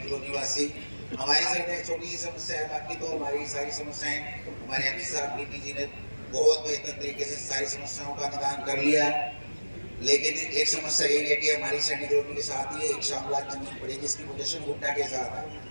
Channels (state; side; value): inverted; both; correlation -1.00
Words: रोड निवासी हमारी सिर्फ एक छोटी सी समस्या है, बाकी तो हमारी सारी समस्याएं हमारे एमपी साहब नीति जी ने बहुत बेहतर तरीके से सारी समस्याओं का निदान कर लिया है। लेकिन एक समस्या यही है कि हमारी सैनिक रोड के साथ ही एक शामलात जमीन पड़ी जिसकी पोजीशन हुड्डा के साथ है।